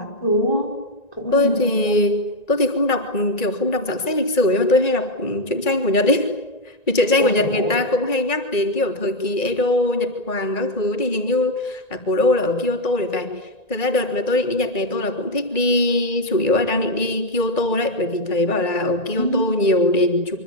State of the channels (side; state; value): right; late; 1.9 ms